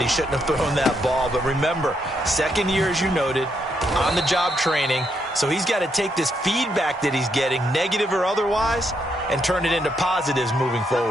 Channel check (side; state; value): both; normal; correlation 0.77